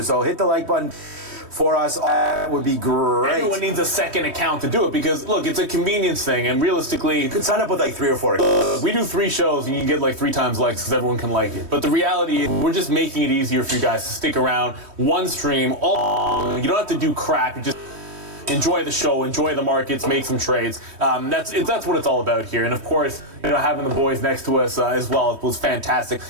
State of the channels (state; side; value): late; left; 3.2 ms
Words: So hit the like button for us. That would be great. Everyone needs a second account to do it because, look, it's a convenience thing, and realistically, you could sign up with like 3 or 4 accounts. We do 3 shows, and you get like 3 times likes because everyone can like it. But the reality is, we're just making it easier for you guys to stick around. One stream, all you don't have to do crap. You just enjoy the show, enjoy the markets, make some trades. That's what it's all about here. And of course, having the boys next to us as well was fantastic.